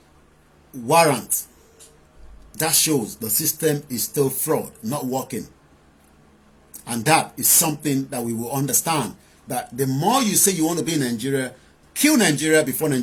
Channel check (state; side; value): identical; both; correlation 1.00